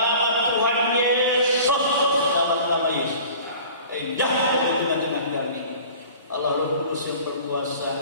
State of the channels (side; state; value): both; inverted; correlation -0.43